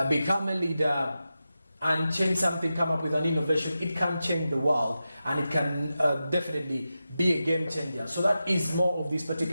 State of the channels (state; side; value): inverted; both; correlation -0.92